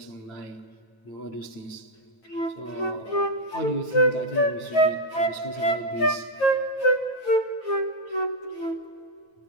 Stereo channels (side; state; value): right; late; 9.3 ms